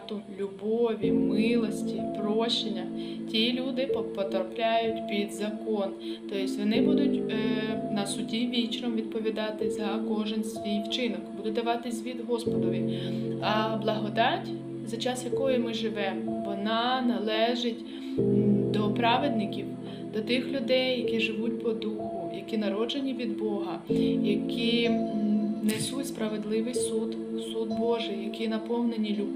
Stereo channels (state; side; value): identical; both; correlation 1.00